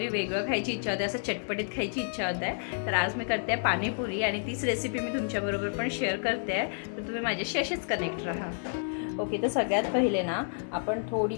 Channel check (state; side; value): silent; right; 56 dB below the other